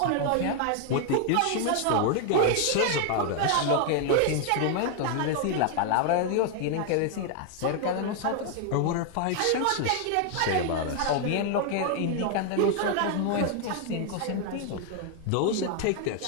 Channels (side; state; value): both; different; correlation 0.00